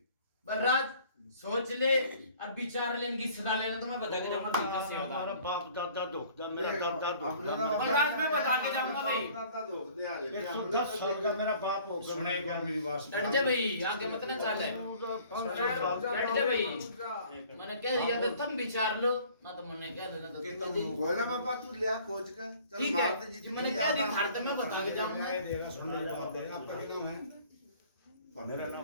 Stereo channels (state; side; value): inverted; both; correlation -0.52